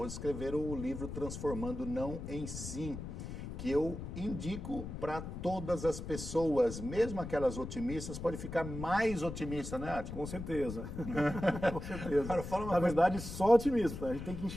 escreveram o livro Transformando Não em Sim, que eu indico para todas as pessoas, mesmo aquelas otimistas, pode ficar mais otimista, né, Átila? Com certeza. Com certeza. Cara, fala uma Na coisa. verdade, só otimismo. A gente tem que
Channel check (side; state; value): left; noise; rumble, 8 dB below the sound